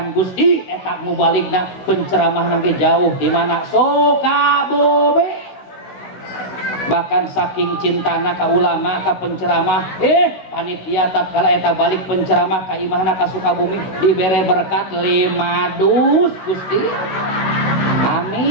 Gusti eta mubaligna penceramah nanti jauh di mana Sukabumi bahkan saking cintana ka ulama ka penceramah panitia tatkala eta balik penceramah ka imahna ka Sukabumi dibere berkat 5 dus Gusti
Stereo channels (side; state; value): right; late; 16 ms